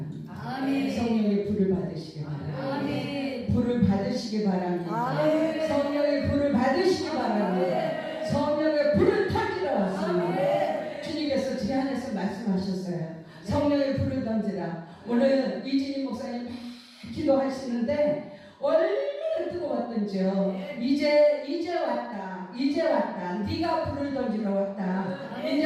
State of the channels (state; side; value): identical; both; correlation 1.00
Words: 성령의 불을 받으시기 바랍니다. 불을 받으시기 바랍니다. 성령의 불을 받으시기 바랍니다. 성령의 불을 타기로 왔습니다. 주님께서 제 안에서 말씀하셨어요. 성령의 불을 던지라. 오늘 이진희 목사님 막 기도하시는데 얼마나 뜨거웠던지요. 이제 왔다. 이제 왔다. 네가 불을 던지러 왔다.